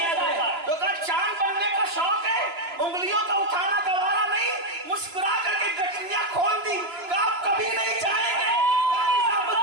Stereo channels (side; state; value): left; late; 3.0 ms